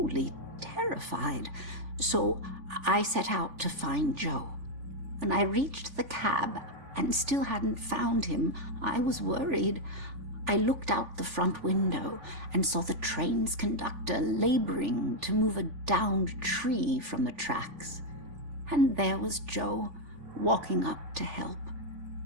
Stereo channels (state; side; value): late; left; 3.4 ms